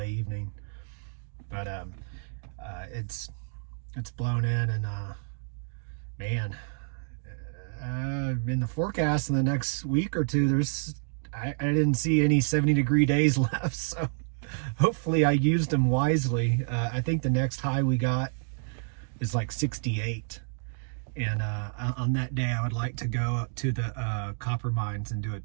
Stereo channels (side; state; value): left; silent; digital silence